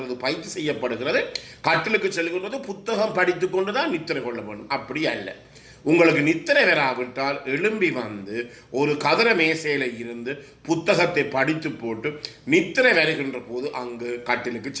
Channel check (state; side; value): identical; both; correlation 1.00